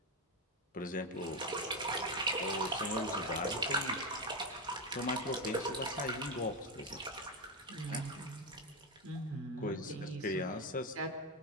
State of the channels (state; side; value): normal; both; correlation 0.10